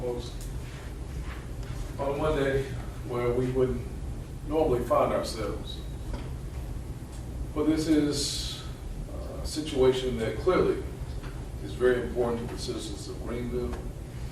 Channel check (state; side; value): identical; both; correlation 1.00